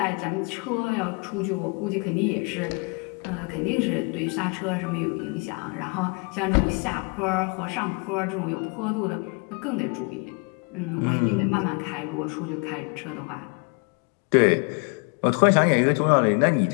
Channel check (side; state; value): right; quieter; 33.5 dB